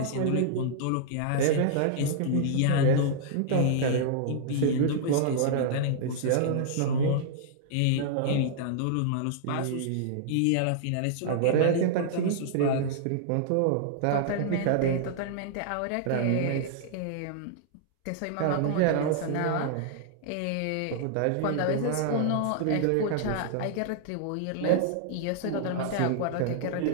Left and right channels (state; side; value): different; both; correlation -0.01